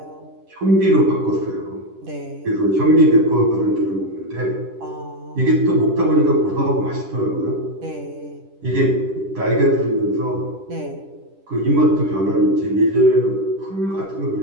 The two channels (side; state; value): left; late; 10 ms